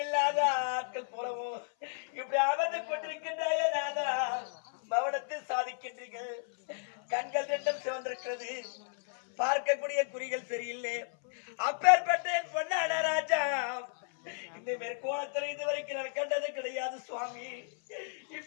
இல்லாத ஆட்கள் போலவும் இப்படி அமர்ந்து கொண்டிருக்கின்றாய நாதா, மௌனத்தில் சாதிக்கின்றீர்கள். கண்கள் ரெண்டும் சிவந்திருக்கிறது, பார்க்கக்கூடிய குறிகள் சரியில்லை. அப்பேற்பட்ட என் பொன்னான ராஜா, இந்த மேற்கோளத்தில் இதுவரைக்கும் நான் கண்டது கிடையாது சுவாமி.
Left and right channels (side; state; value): right; silent; 56 dB below the other